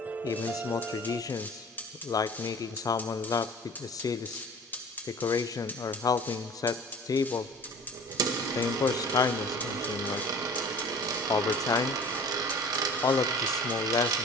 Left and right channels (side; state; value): both; normal; correlation 0.44